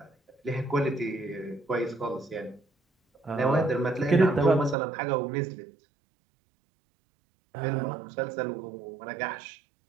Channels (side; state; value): left; drops out; at 4.8 s